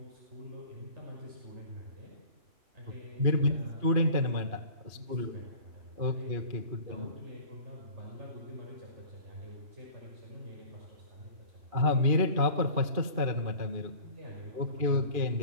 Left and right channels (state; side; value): late; left; 2.5 ms